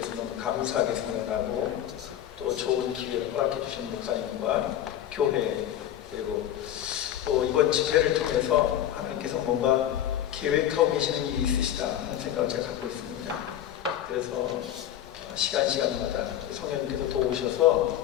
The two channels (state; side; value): quieter; right; 11.3 dB